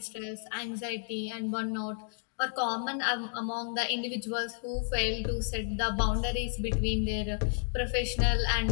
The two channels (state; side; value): silent; right; digital silence